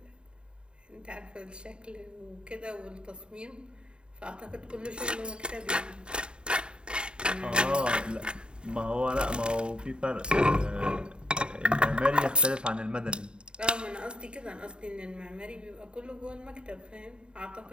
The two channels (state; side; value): late; left; 0.051 ms